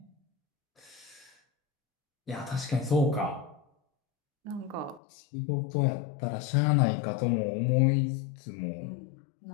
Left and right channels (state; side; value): drops out; right; at 5.0 s